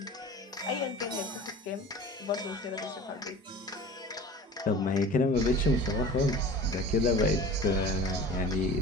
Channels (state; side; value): normal; both; correlation 0.39